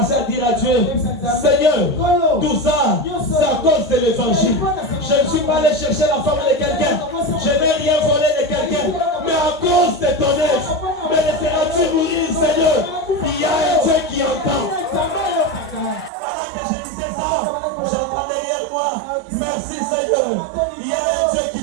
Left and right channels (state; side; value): drops out; left; at 16.1 s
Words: à dire à Dieu, Seigneur, tout ça, c'est à cause de l'évangile. Je ne suis pas allé chercher la femme de quelqu'un. Je n'ai rien volé de quelqu'un. Mais à cause de ton œuvre, me laisseras-tu mourir, Seigneur? Il y a un Dieu qui entend. Pendant que je disais ça, j'entends derrière moi, merci Seigneur. Il y a un Dieu qui